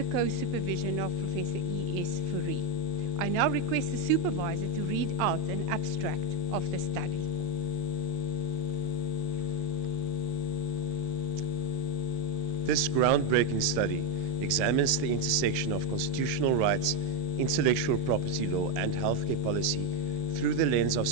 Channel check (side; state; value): left; late; 5.8 ms